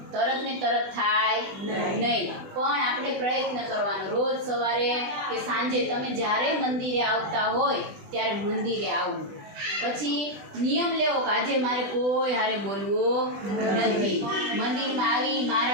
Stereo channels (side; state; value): left; late; 20 ms